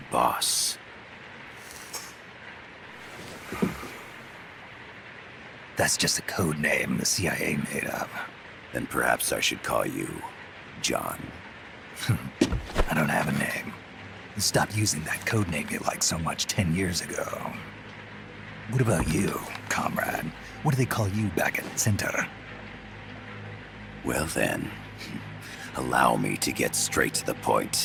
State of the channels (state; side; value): identical; both; correlation 1.00